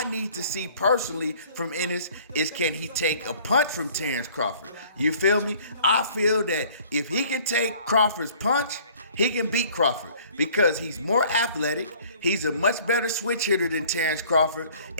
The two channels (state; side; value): inverted; both; correlation -0.53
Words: need to see personally from Ennis is can he take a punch from Terence Crawford? You feel me? I feel that if he can take Crawford's punch, he can beat Crawford because he's more athletic. He's a much better switch hitter than Terence Crawford.